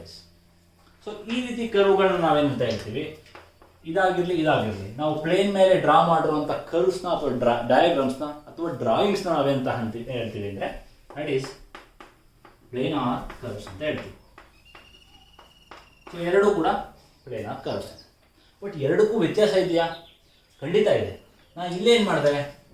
So ಈ ರೀತಿ ಕರ್ವ್ಗಳನ್ನ ನಾವೇನಂತ ಹೇಳ್ತೀವಿ? ಇದಾಗಿರಲಿ ನಾವು ಪ್ಲೇನ್ ಮೇಲೆ ಡ್ರಾ ಮಾಡಿರುವಂಥ ಕರ್ವ್ಸ್ನ ಅಥವಾ ಡಯಾಗ್ರಾಮ್ಸ್ನ ಅಥವಾ ಡ್ರಾಯಿಂಗ್ಸ್ನ ನಾವೇಂತ ಹೇಳ್ತೀವಿ ಅಂದರೆ ದಟ್ ಈಸ್ ಪ್ಲೇನಾರ್ ಕರ್ವ್ಸ್ ಅಂತ ಹೇಳ್ತೀವಿ. ಸೊ ಎರಡೂ ಕೂಡ ಪ್ಲೇನಾರ್ ಕರ್ವ್ಸ್. ಬಟ್ ಎರಡಕ್ಕೂ ವ್ಯತ್ಯಾಸ ಇದೆಯಾ? ಖಂಡಿತ ಇದೆ. ನಾನು ಇಲ್ಲೇ ಏನು ಮಾಡಿದೆ,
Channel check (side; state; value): both; identical; correlation 1.00